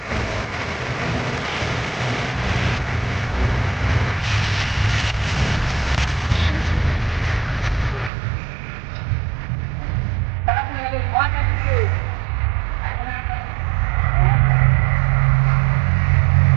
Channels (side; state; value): left; drops out; at 8.1 s